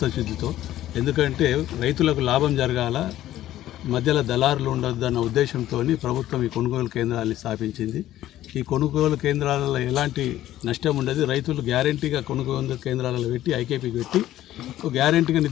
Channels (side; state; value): right; quieter; 13.6 dB